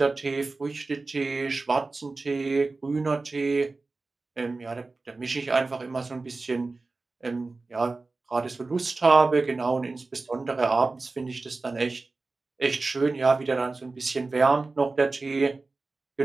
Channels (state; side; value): quieter; left; 3.6 dB